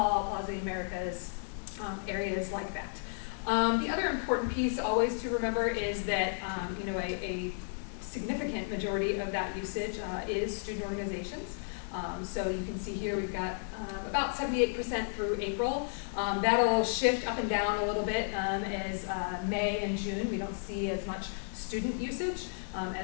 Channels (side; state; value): right; silent; digital silence